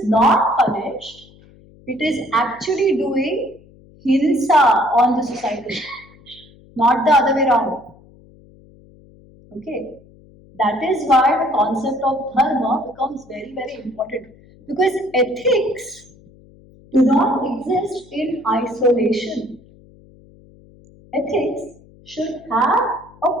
not punished, it is actually doing hinsa on the society, not the other way around. Okay, that is why the concept of dharma becomes very, very important, because ethics do not exist in isolation. Ethics should have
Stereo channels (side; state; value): left; noise; hum, 26 dB below the sound